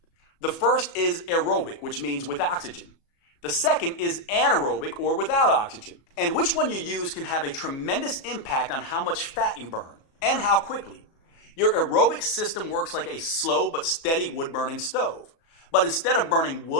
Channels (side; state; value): right; late; 37 ms